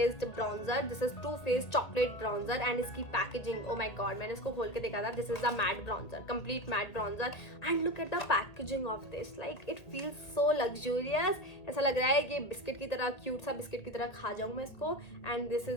bronzer. This is Too Faced chocolate bronzer. And इसकी packaging, oh my god, मैंने इसको खोल के देखा था. This is the matte bronzer, complete matte bronzer. And look at the packaging of this. Like it feels so luxurious. ऐसा लग रहा है कि बिस्किट की तरह, क्यूट सा बिस्किट की तरह खा जाऊँ मैं इसको. And this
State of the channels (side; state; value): right; late; 1.8 ms